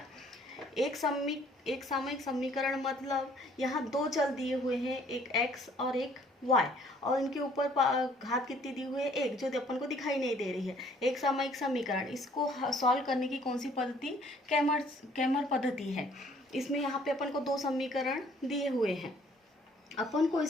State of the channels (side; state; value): both; normal; correlation 0.60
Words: एक सामायिक समीकरण मतलब यहाँ दो चल दिए हुए हैं, एक x और एक y, और इनके ऊपर घात कितनी दी हुई है, एक, जो अपन को दिखाई नहीं दे रही है। एक सामायिक समीकरण, इसको सॉल्व करने की कौन सी पद्धति, कैमर पद्धति है। इसमें यहाँ पे अपन को दो समीकरण दिए हुए हैं, अपन को